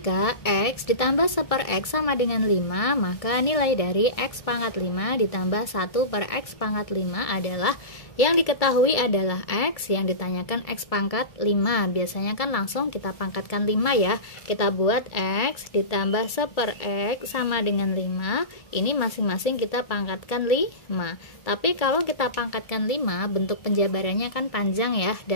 X ditambah 1/X sama dengan 5, maka nilai dari X pangkat 5 ditambah 1/X pangkat 5 adalah, yang diketahui adalah X, yang ditanyakan X pangkat 5. Biasanya kan langsung kita pangkatkan 5 ya. Kita buat X ditambah 1/X sama dengan 5. Ini masing-masing kita pangkatkan 5. Tapi kalau kita pangkatkan 5, bentuk penjabarannya kan panjang ya,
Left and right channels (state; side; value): late; right; 1.7 ms